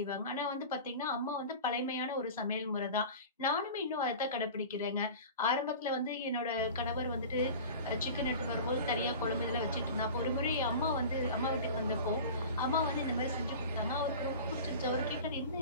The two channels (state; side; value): inverted; both; correlation -0.36